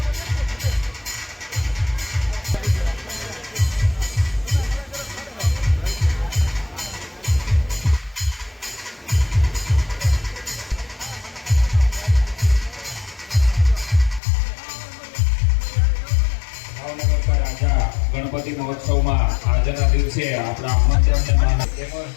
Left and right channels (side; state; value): right; drops out; at 14.2 s